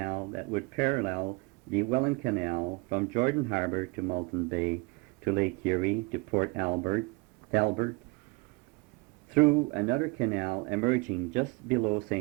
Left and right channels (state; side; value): quieter; left; 27.6 dB